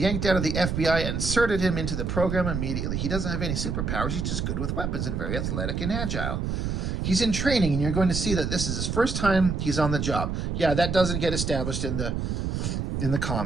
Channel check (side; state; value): right; noise; rumble, 1 dB below the sound